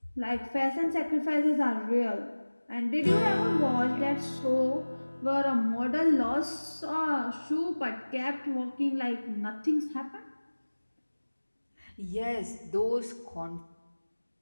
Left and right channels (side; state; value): both; inverted; correlation -1.00